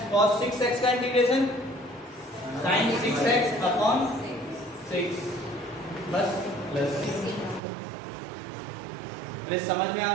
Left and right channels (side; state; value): left; drops out; at 7.6 s